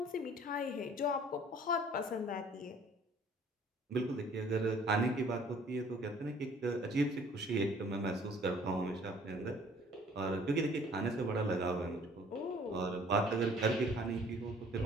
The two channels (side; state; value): both; normal; correlation 0.55